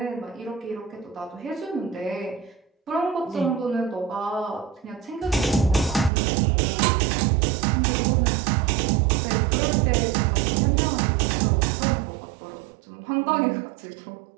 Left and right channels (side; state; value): left; drops out; at 6.1 s